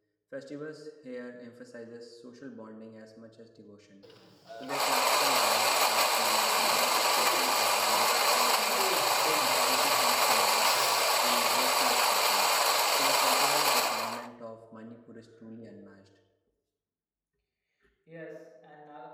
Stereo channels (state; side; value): identical; both; correlation 1.00